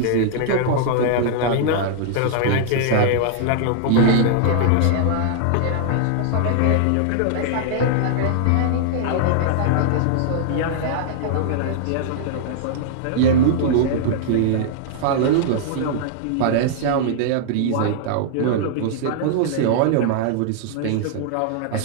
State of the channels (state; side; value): different; both; correlation -0.01